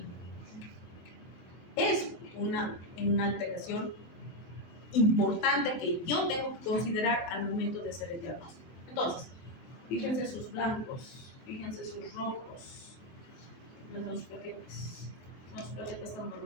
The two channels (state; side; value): late; right; 24 ms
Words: Es una alteración importante que yo tengo que considerar al momento de hacer el diagnóstico. Entonces, fíjense sus blancos, fíjense sus rojos, los dos plaquetas. Los plaquetas están